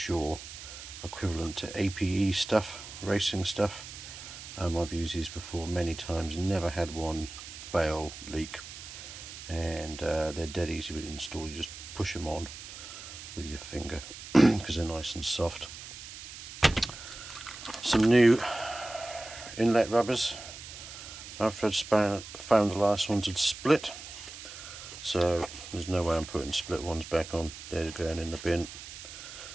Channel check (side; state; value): right; noise; hiss, 12 dB below the sound